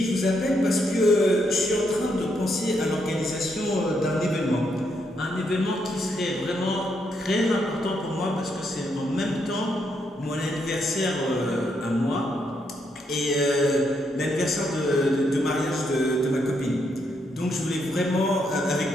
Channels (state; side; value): normal; both; correlation 0.77